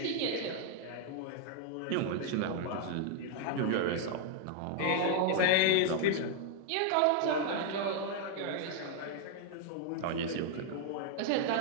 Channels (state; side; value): different; both; correlation 0.00